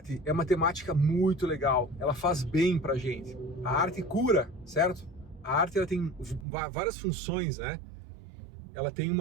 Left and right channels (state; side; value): drops out; left; at 6.5 s